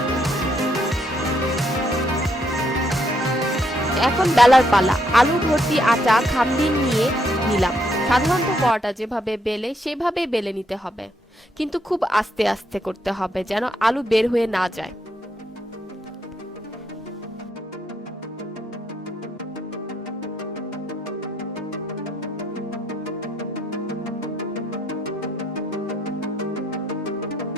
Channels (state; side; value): normal; both; correlation 0.74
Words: এখন বেলার পালা। আলু ভর্তি আটা খামির নিয়ে নিলাম। সাধারণত পরোটা যেভাবে বেলে সেভাবে বেলে নিতে হবে, কিন্তু খুব আস্তে আস্তে করতে হবে যেন আলু বের হয়ে না যায়।